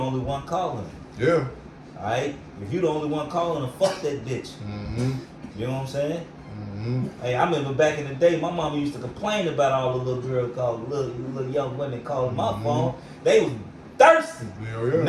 one calling. Yeah. Alright? If you the only one calling her, fuck that bitch. You know what I'm saying? Hey, I remember back in the day, my mama used to complain about all the little girls calling, little young women calling my phone. They was thirsty. Yeah.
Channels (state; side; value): identical; both; correlation 1.00